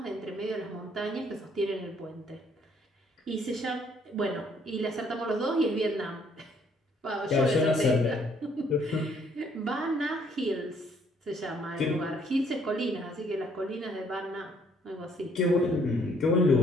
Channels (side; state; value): both; normal; correlation 0.65